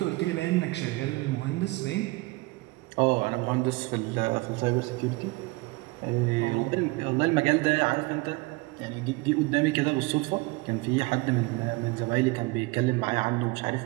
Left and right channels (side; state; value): left; quieter; 24.0 dB